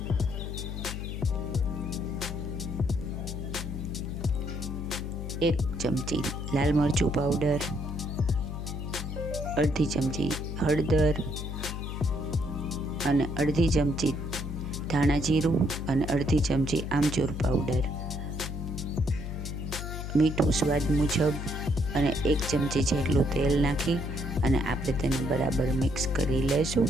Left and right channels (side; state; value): left; noise; hum, 6 dB below the sound